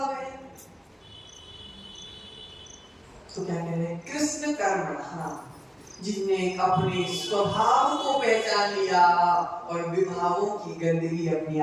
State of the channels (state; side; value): identical; both; correlation 1.00